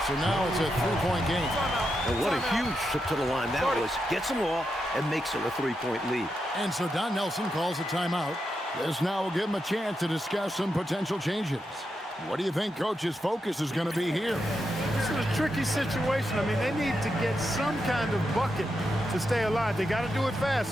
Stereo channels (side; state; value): both; normal; correlation 0.85